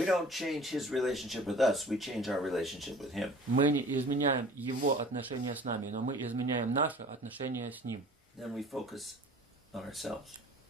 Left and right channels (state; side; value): normal; both; correlation 0.45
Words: don't change His relationship with us, we change our relationship with Him. мы не изменяем Его отношения с нами, но мы изменяем наши отношения с Ним. Then we focus on ourselves.